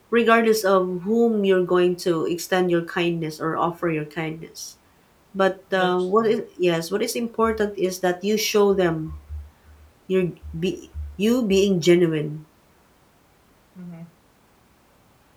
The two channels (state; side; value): identical; both; correlation 1.00